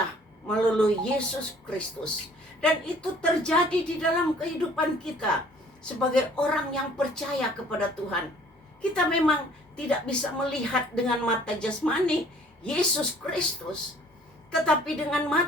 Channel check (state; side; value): normal; both; correlation 0.56